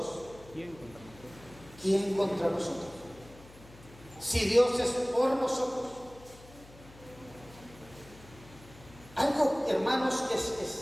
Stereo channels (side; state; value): left; noise; hum, 21 dB below the sound